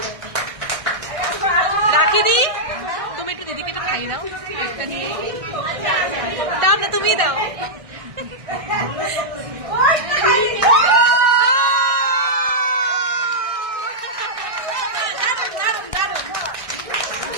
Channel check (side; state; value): left; late; 1.6 ms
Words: দি, তুমি একটু দিদিকে একটু খাইয়ে দাও, দাও না, তুমি দাও।